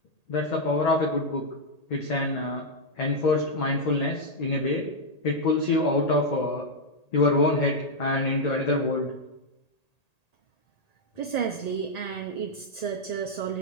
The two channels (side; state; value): right; late; 1.8 ms